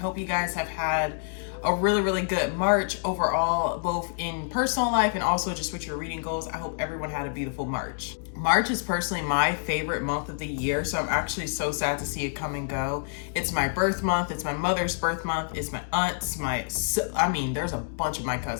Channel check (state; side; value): silent; right; digital silence